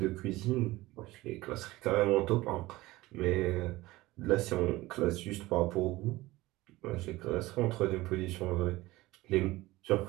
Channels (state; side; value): quieter; left; 19.0 dB